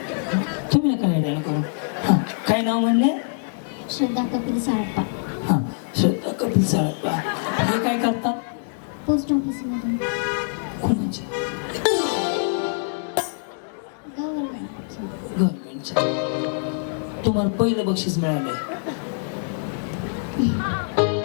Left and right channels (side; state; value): right; silent; digital silence